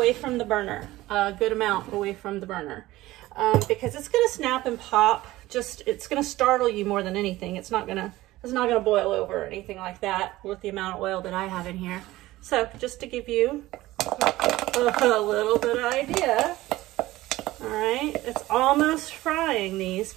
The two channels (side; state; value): left; quieter; 17.3 dB